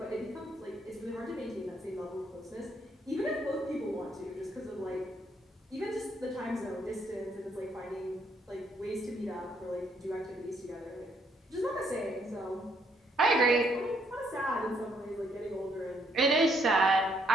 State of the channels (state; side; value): normal; both; correlation 0.71